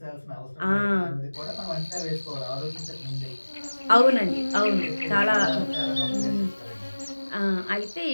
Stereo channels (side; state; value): both; inverted; correlation -1.00